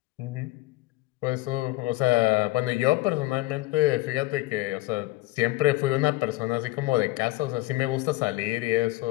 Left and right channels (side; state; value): right; quieter; 18.8 dB